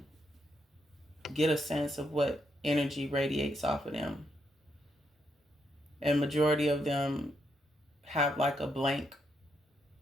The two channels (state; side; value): normal; both; correlation 0.78